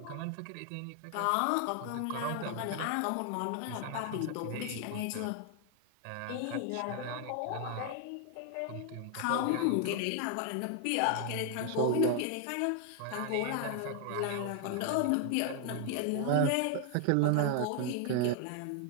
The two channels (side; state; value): both; different; correlation 0.00